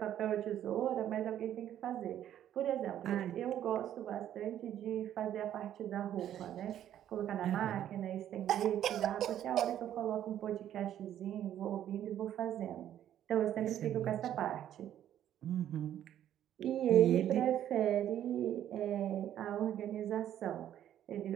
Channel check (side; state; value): left; quieter; 11.1 dB